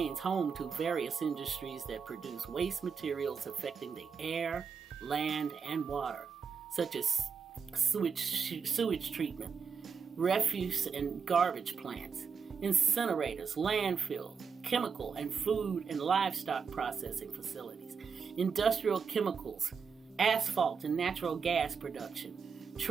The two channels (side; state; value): left; quieter; 6.0 dB